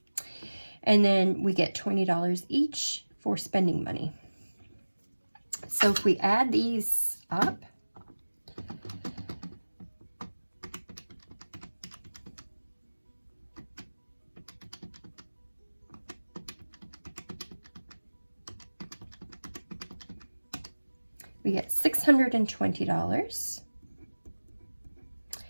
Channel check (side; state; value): both; inverted; correlation -1.00